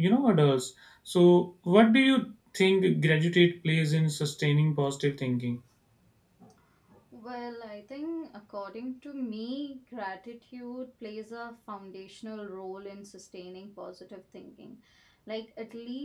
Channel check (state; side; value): identical; both; correlation 1.00